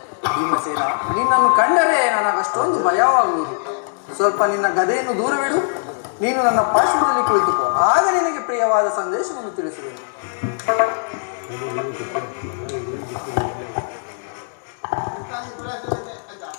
ಭೀಮಸೇನ, ನಿನ್ನನ್ನು ಕಂಡರೆ ನನಗಷ್ಟೊಂದು ಭಯವಾಗುವುದು. ಸ್ವಲ್ಪ ನಿನ್ನ ಗದೆಯನ್ನು ದೂರವಿಡು. ನೀನು ನನ್ನ ಪಾರ್ಶ್ವದಲ್ಲಿ ಕುಳಿತುಕೋ. ಆಗ ನಿನಗೆ ಪ್ರಿಯವಾದ ಸಂದೇಶವನ್ನು ತಿಳಿಸುವೆನು.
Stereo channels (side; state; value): right; silent; digital silence